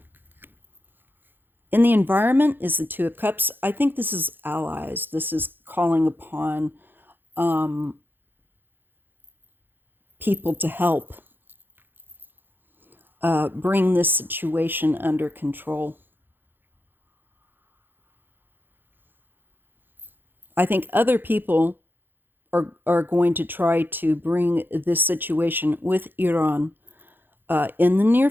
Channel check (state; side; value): late; left; 0.096 ms